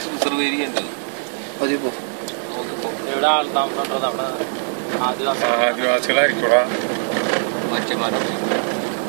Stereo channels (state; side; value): silent; left; digital silence